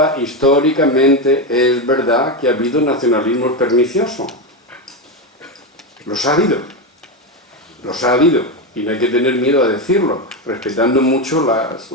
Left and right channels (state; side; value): normal; both; correlation 0.12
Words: históricamente es verdad que ha habido nacionalismos perniciosos. Los ha habido, y no hay que tener miedo a decirlo, respetando mucho